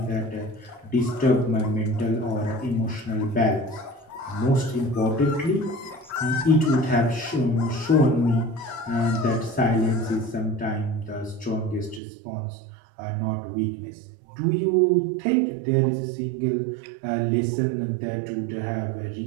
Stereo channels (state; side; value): drops out; left; at 12.0 s